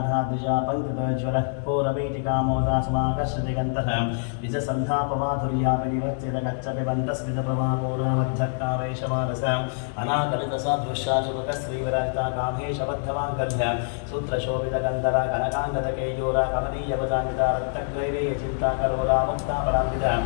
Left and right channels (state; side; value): silent; right; digital silence